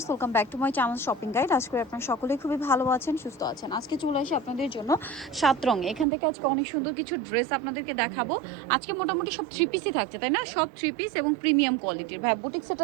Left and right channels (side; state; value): left; drops out; at 6.1 s